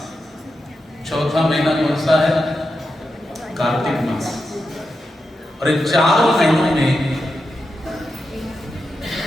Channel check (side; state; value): both; normal; correlation 0.88